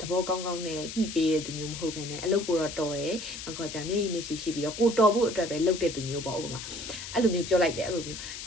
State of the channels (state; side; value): noise; left; hiss, 9 dB below the sound